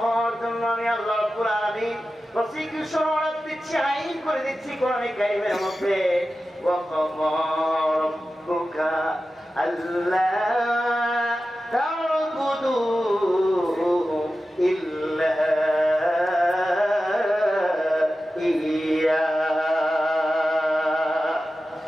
হওয়ার জন্য আমি আল্লাহ রাব্বুল আলামিন প্রসিকিউশন অর্ডার দিচ্ছি, আইন করে দিচ্ছি কোরআনে কারীমের মধ্যে। ওয়া ক্বাদা রাব্বুকা আল্লা তা'বুদু ইল্লা ইয়্যা।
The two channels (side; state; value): both; normal; correlation 0.93